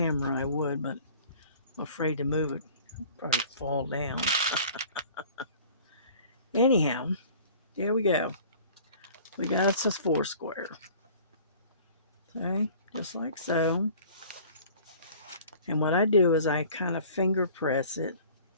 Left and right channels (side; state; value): both; inverted; correlation -0.48